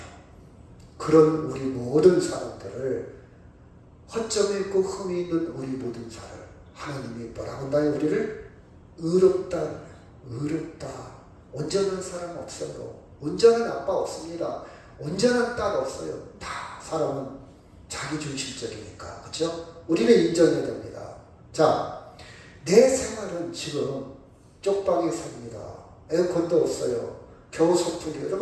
그런 우리 모든 사람들을 허점이 있고 흠이 있는 우리 모든 사람 하나님이 뭐라고 한다요? 우리를 의롭다. 온전한 사람 없어요. 온전한 아빠 없습니다. 온전한 딸 없어요. 다 사람은 자기 중심적이니까. 그렇죠? 우리는 인정해야 됩니다. 자, 내 생활은 지금 쪽방에 삽니다. 에어컨도 없어요. 겨우 소풍기.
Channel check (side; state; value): both; identical; correlation 1.00